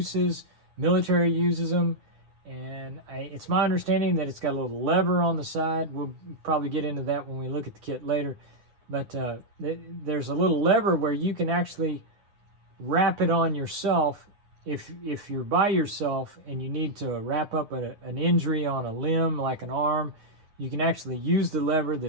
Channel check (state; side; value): late; left; 9.6 ms